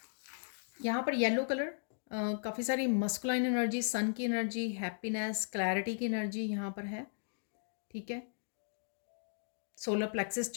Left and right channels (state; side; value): silent; right; digital silence